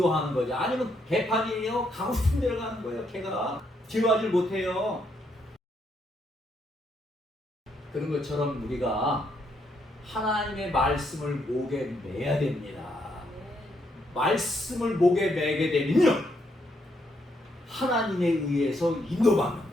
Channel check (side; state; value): both; normal; correlation 0.75